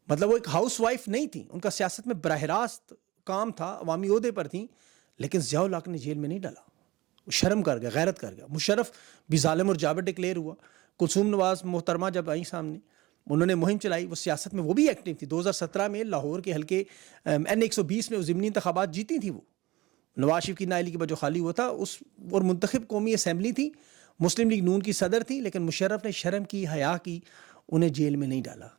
مطلب وہ ایک ہاؤس وائف نہیں تھیں, ان کا سیاست میں براہ راست کام تھا, عوامی عہدے پر تھیں. لیکن ضیاء الحق نے جیل میں نہیں ڈالا, شرم کر گیا, غیرت کر گیا. مشرف بھی ظالم اور جابر ڈکلیئر ہوا. کلثوم نواز محترمہ جب آئیں سامنے, انہوں نے مہم چلائی, وہ سیاست میں وہ بھی ایکٹیو تھی. 2017 میں لاہور کے حلقے N120 میں ضمنی انتخابات جیتی تھی. وہ نواز شریف کی نااہلی کے بعد جو خالی ہوا تھا اس, اور منتخب قومی اسمبلی تھی, مسلم لیگ نون کی صدر تھی, لیکن مشرف نے شرم کی, حیا کی, انہیں جیل میں نہیں ڈالا.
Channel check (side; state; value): left; quieter; 19.6 dB